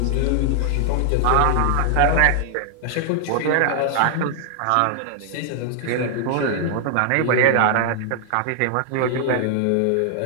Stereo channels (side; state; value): both; different; correlation 0.00